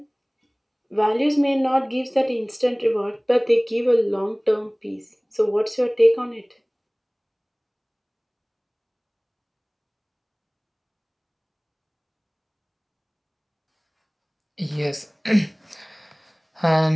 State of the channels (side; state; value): both; identical; correlation 1.00